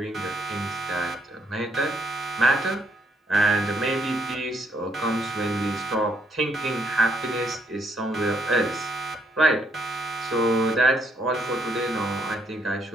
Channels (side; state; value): both; normal; correlation 0.73